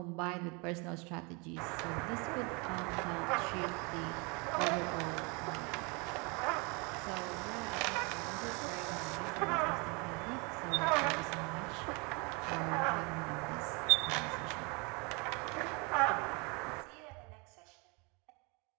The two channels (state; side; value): quieter; left; 30.4 dB